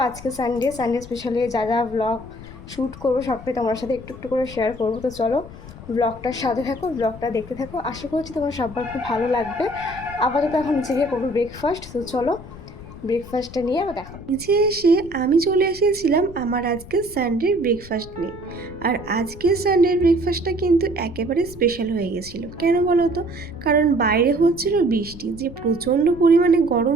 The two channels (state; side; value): noise; left; rumble, 16 dB below the sound